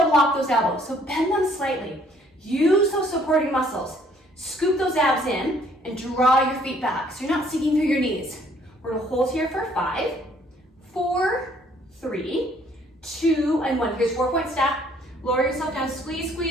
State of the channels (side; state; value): both; normal; correlation 0.62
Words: lock those elbows. So bend them slightly. Use those supporting muscles. Scoop those abs in and draw your feet back so you're not sinking through your knees. We're gonna hold here for 5, 4, 3, 2, and 1. Here's 4-point stack. Lower yourself down, squeeze,